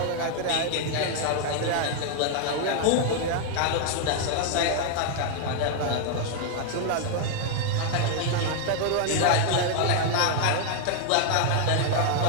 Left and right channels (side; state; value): both; different; correlation 0.00